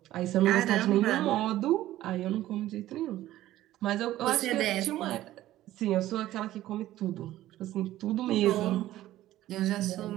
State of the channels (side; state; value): left; quieter; 14.5 dB